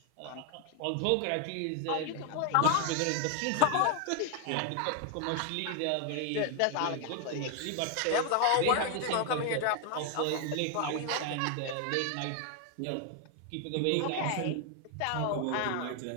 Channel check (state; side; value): different; both; correlation 0.00